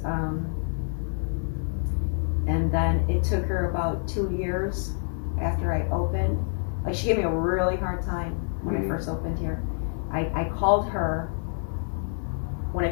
and then it took her about 2 years after I opened. Like, she gave me a really hard time when I first opened here. I called her when I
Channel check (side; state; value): right; silent; 60 dB below the other